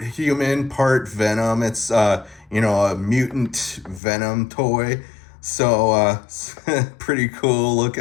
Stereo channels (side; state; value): right; drops out; at 4.0 s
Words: human, part Venom. It's you know, a mutant Venom toy. So pretty cool